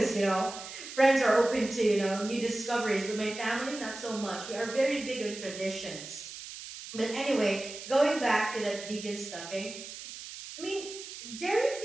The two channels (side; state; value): right; noise; hiss, 12 dB below the sound